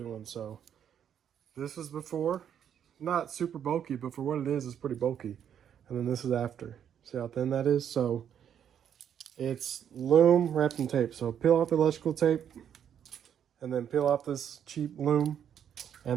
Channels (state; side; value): quieter; left; 9.0 dB